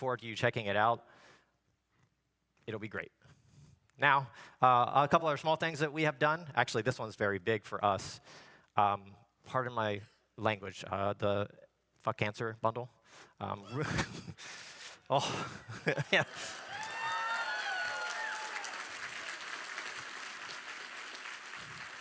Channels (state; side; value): identical; both; correlation 1.00